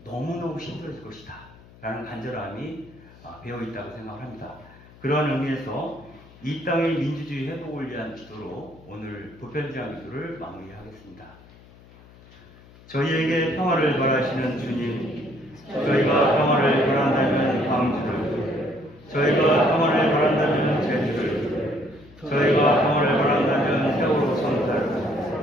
너무너무 힘들어질 것이다 라는 간절함이 배어있다고 생각합니다. 그러한 의미에서 이 땅의 민주주의 회복을 위한 기도로 오늘 보편제한 기도를 마무리하겠습니다. 저희에게 평화를 바라시는 주님, 저희가 평화를 바란다면 광주를, 저희가 평화를 바란다면 제주를, 저희가 평화를 바란다면 세월호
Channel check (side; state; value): left; noise; hum, 23 dB below the sound